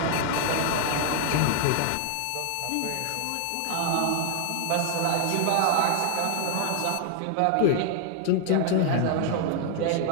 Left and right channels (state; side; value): different; both; correlation 0.00